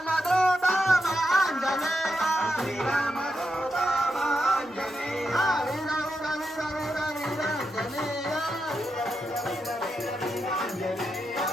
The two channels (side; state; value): both; normal; correlation 0.85